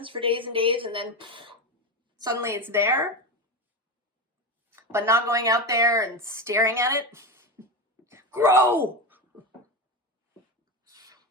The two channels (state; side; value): normal; both; correlation 0.17